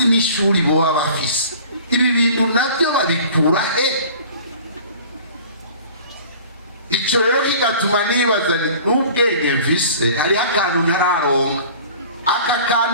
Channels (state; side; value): inverted; both; correlation -0.45